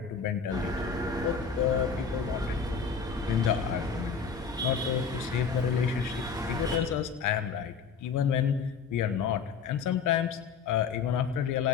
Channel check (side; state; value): right; quieter; 6.0 dB